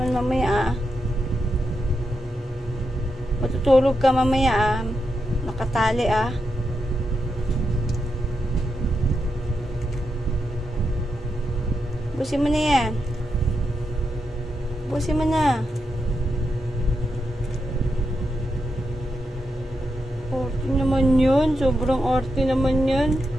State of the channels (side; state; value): both; normal; correlation 0.85